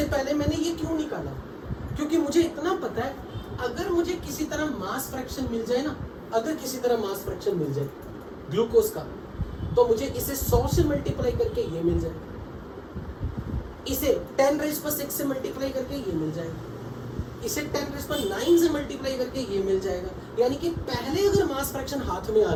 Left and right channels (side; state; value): both; identical; correlation 1.00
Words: पहले मैंने ये क्यों निकाला, क्योंकि मुझे इतना पता है अगर मुझे किसी तरह मास फ्रैक्शन मिल जाए ना, अगर किसी तरह मास फ्रैक्शन मिल जाए ग्लूकोज का, तो मुझे इसे 100 से मल्टीप्लाई करके ये मिल जाए, इसे 10⁻⁶ से मल्टीप्लाई करके ये मिल जाएगा, इसे 10⁹ से मल्टीप्लाई करके ये मिल जाएगा। यानी कि पहले अगर मास फ्रैक्शन हाथ में आ